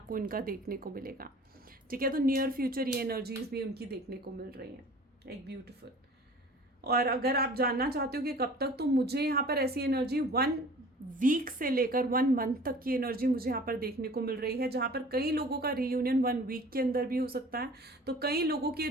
इनका देखने को मिलेगा, ठीक है। तो नियर फ्यूचर ये एनर्जीज भी उनकी देखने को मिल रही हैं, एक ब्यूटीफुल। और अगर आप जानना चाहते हो कि कब तक, तो मुझे यहाँ पर ऐसी एनर्जी 1 वीक से लेकर 1 मंथ तक की एनर्जी मुझे यहाँ पर देखने को मिल रही है, जहाँ पर कई लोगों का रीयूनियन 1 वीक के अंदर भी हो सकता है, तो कई लोगों के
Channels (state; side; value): normal; both; correlation 0.45